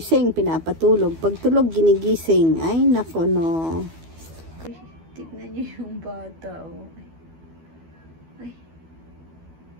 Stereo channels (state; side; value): late; left; 12 ms